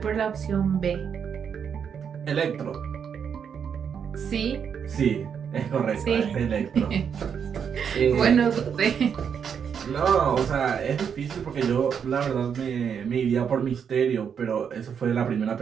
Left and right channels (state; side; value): quieter; left; 7.3 dB